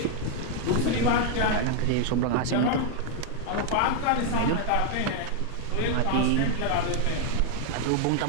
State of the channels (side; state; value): both; different; correlation 0.00